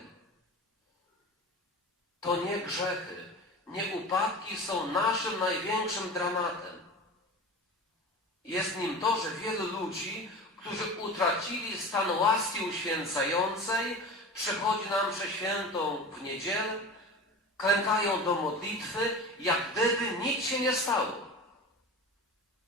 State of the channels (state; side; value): normal; both; correlation 0.32